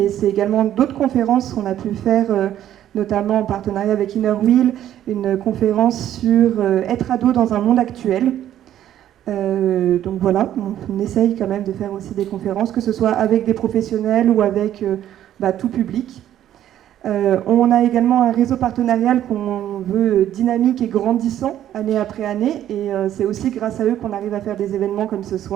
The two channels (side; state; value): left; quieter; 11.6 dB